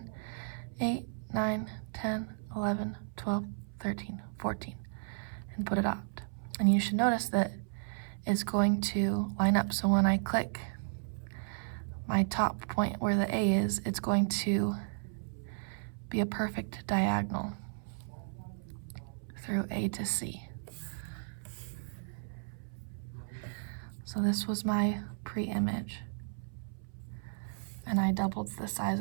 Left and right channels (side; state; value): left; silent; 55 dB below the other